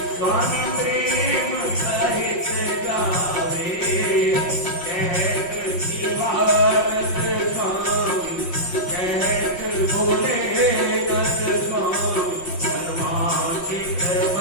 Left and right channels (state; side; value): late; right; 5.6 ms